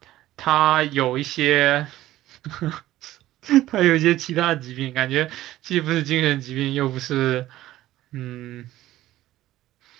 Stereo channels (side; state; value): left; quieter; 14.9 dB